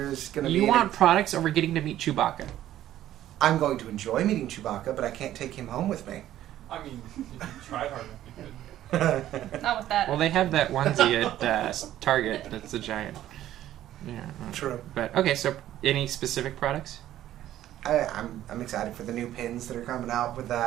going to be... You want products over getting to meet Chewbacca? I'm going to enjoy meeting Chewbacca, but I can't take him home with me. I mean, if you tried hard enough, you could. Not with that. Well, they have that onesie at Target that's a giant. Yeah. True. But okay, so any specific products? I'm excited for the new pins that are coming out with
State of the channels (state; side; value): quieter; left; 12.8 dB